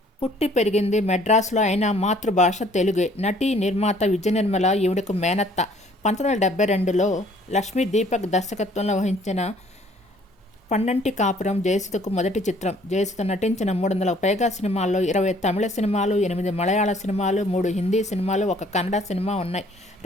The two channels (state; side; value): normal; both; correlation 0.58